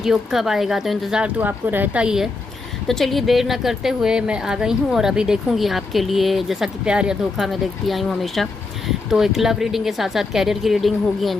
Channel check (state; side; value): quieter; right; 3.7 dB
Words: कब आएगा, तो इंतज़ार तो आपको रहता ही है। तो चलिए देर न करते हुए मैं आ गई हूँ और अभी देखूँगी आपके लिए, जैसा कि प्यार या धोखा मैं देखती आई हूँ हमेशा। तो एक लव रीडिंग के साथ साथ कैरियर की रीडिंग होगी,